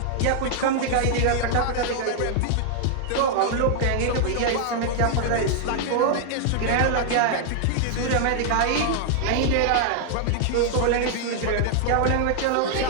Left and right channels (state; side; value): different; both; correlation 0.00